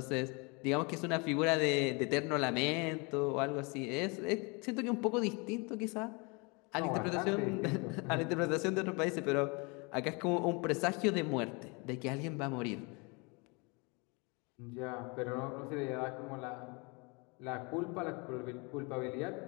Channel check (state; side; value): quieter; right; 30.0 dB